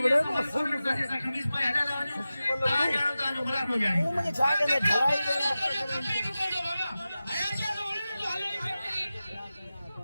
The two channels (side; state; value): both; inverted; correlation -0.95